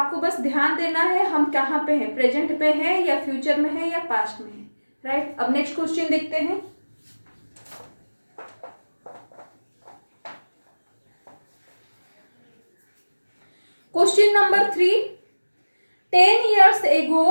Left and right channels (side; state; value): both; inverted; correlation -1.00